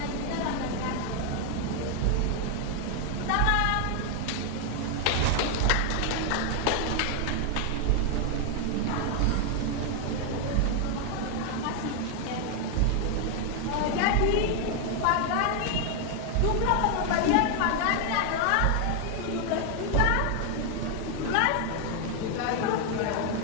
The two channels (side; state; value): both; different; correlation 0.00